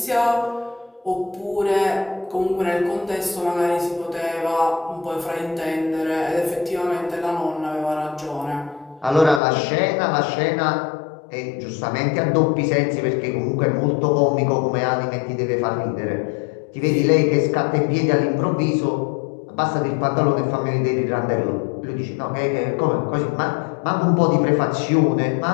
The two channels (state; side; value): drops out; right; at 9.4 s